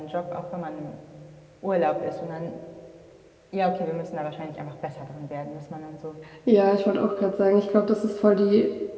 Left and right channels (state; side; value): identical; both; correlation 1.00